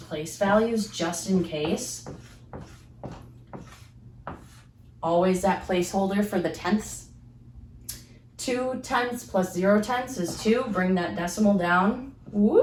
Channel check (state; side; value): identical; both; correlation 1.00